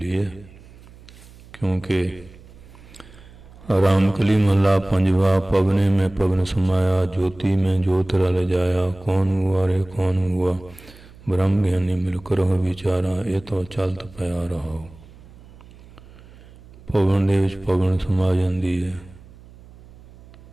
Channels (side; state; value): right; noise; hum, 22 dB below the sound